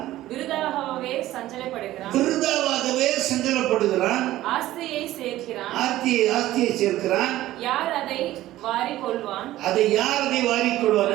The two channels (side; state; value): left; quieter; 15.1 dB